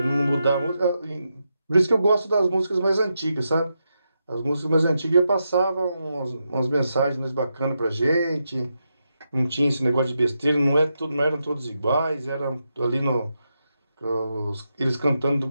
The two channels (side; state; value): both; inverted; correlation -0.86